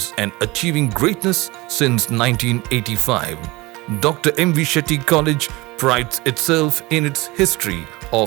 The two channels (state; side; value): quieter; left; 22.2 dB